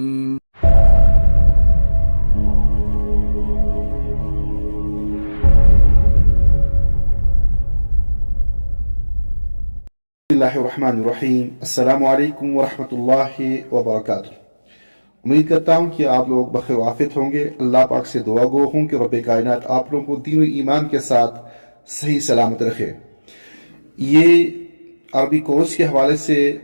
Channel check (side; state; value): both; inverted; correlation -1.00